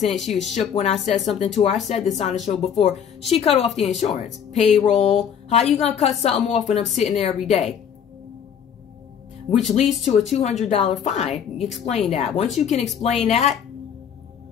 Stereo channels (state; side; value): quieter; right; 8.1 dB